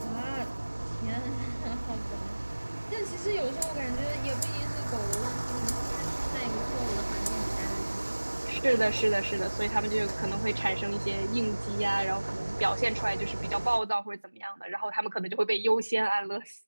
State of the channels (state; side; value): inverted; both; correlation -1.00